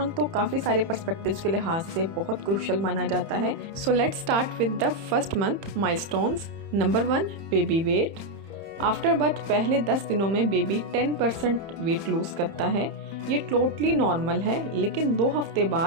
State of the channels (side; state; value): left; late; 31 ms